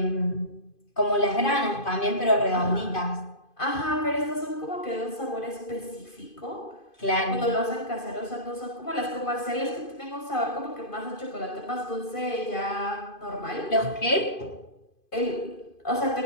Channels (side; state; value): right; late; 2.5 ms